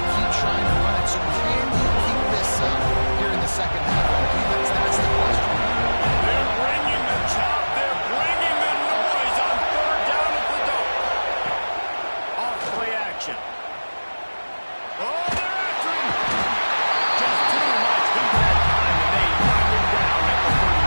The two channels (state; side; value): inverted; both; correlation -1.00